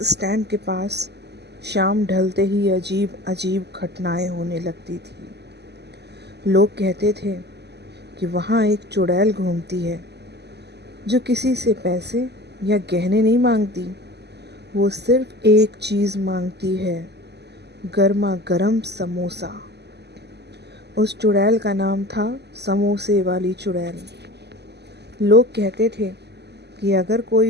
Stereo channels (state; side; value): late; left; 0.49 ms